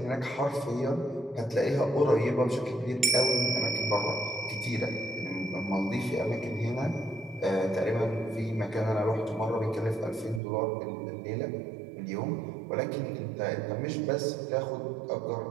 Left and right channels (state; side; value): drops out; left; at 10.4 s